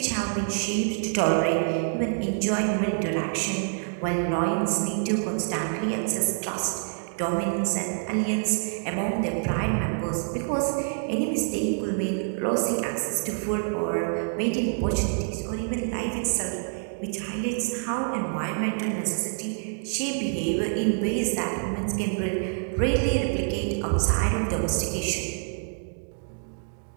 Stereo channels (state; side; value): silent; left; digital silence